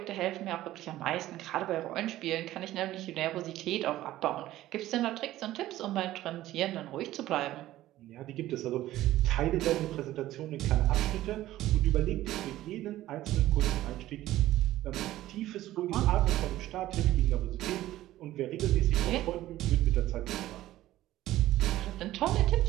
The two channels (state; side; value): quieter; left; 14.9 dB